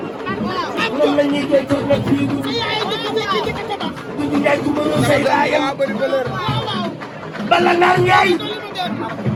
moom la ñuy koy toog nag fii. Dudu Njaay ku mënul say baayam. bala naar Njaay.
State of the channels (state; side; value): identical; both; correlation 1.00